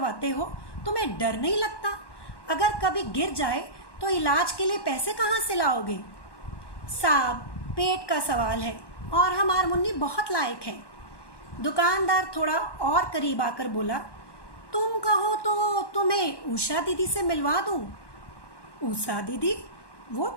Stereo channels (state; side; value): late; right; 1.1 ms